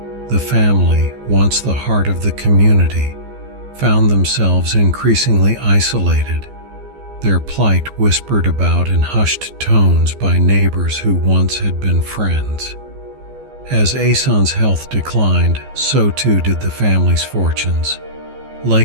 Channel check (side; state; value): left; late; 14 ms